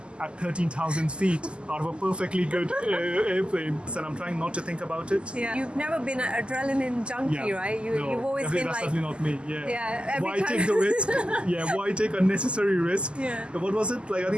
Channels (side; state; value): left; late; 0.051 ms